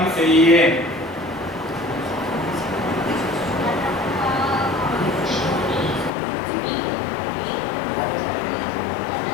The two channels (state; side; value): drops out; right; at 6.1 s